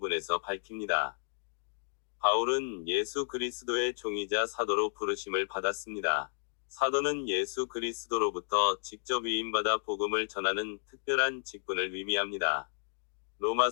밝힙니다. 바울은 예수 그리스도의 종이자 사도로 부르심을 받았습니다. 사도는 예수 그리스도로부터 직접 위임받아 복음을 전하는 특별한 직분을 의미합니다.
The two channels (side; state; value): right; silent; digital silence